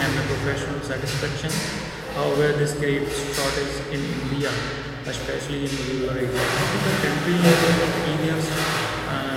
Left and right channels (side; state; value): both; identical; correlation 1.00